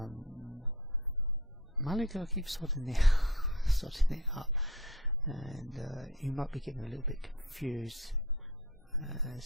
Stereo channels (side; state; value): both; normal; correlation 0.43